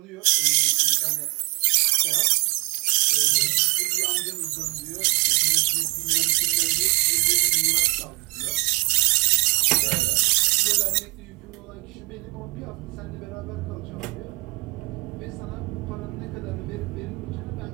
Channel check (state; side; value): quieter; left; 29.8 dB